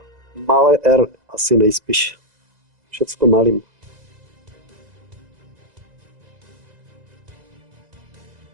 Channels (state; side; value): late; left; 2.0 ms